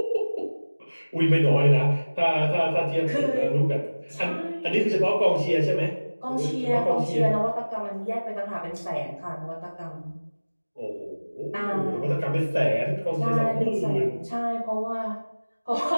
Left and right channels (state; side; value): inverted; both; correlation -1.00